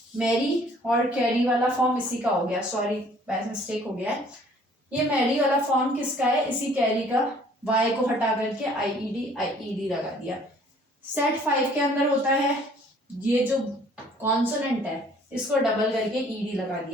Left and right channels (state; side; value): normal; both; correlation 0.56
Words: मैरी और कैरी वाला फॉर्म इसी का हो गया। सॉरी, बाय मिस्टेक हो गया है। ये मैरी वाला फॉर्म किसका है? इसी कैरी का। वाई को हटा करके आईईडी लगा दिया। सेट 5 के अंदर होता है ये जो कॉन्सोनेंट है इसको डबल करके ईडी लगा